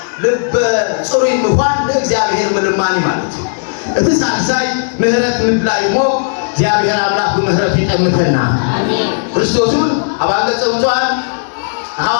ልብ ጽሩ ይምፋን ለእግዚአብሔር ምልማኒ ማለት እቲ ሳልሳይ ምህረት ምድላይሞ እግዚአብሔር አምላክ በምህረት ይጠምተና አሜን ክርስቶስን አባገጸውቷን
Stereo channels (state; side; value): silent; right; digital silence